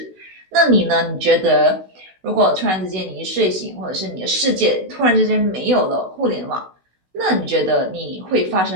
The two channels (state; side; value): late; left; 16 ms